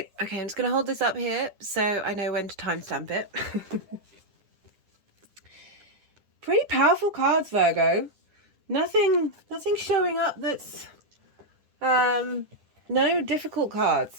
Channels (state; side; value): late; left; 10 ms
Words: okay, I'm just going to hold this up here so I know when to timestamp it. Pretty powerful cards, Virgo. Nothing showing up that's no difficult